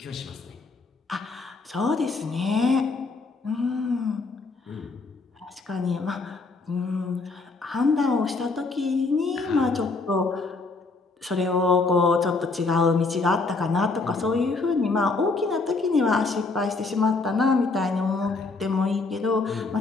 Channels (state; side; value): quieter; right; 3.8 dB